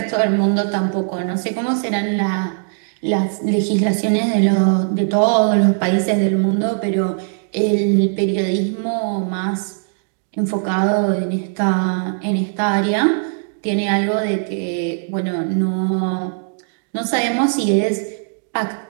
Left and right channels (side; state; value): left; silent; digital silence